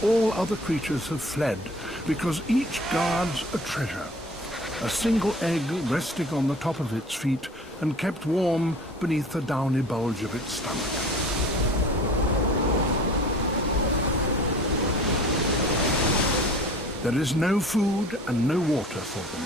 all other creatures have fled, because each guards a treasure, a single egg resting on the top of its feet and kept warm beneath the downy bulge of its stomach. There is no food and no water for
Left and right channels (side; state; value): both; normal; correlation 0.45